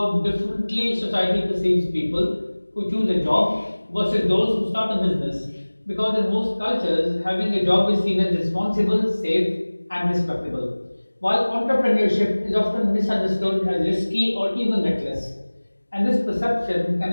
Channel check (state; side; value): inverted; both; correlation -1.00